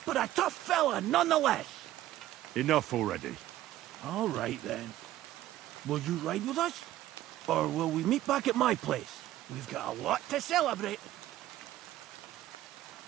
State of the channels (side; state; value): left; quieter; 14.3 dB